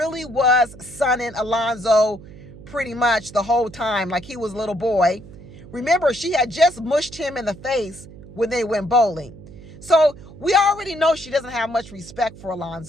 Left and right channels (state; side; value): noise; right; hum, 18 dB below the sound